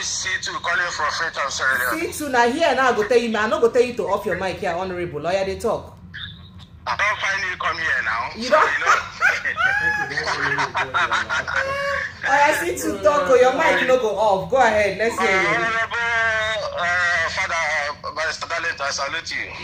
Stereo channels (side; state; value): both; identical; correlation 1.00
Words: C2 calling from Freetown, Sierra Leone. C2 now here now I go tell you, man. I not go tell you to off your mic here, honorable lawyer. They talk. I don't finally come here now. You don't. I see to talk. Or your mic no go off. Go ahead. Let's hear you. Honorable Father Barrister Dalent, I salute you.